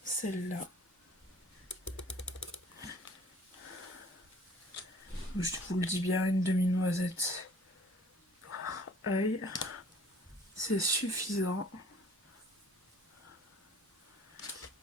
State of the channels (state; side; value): normal; both; correlation 0.53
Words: celle-là. Je vous le dis bien, une demi-noisette par œil. C'est suffisant.